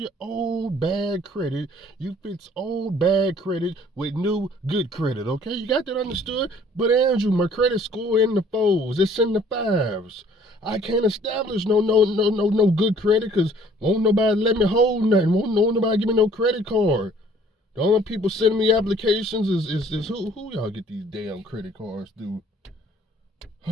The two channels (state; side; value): normal; both; correlation 0.57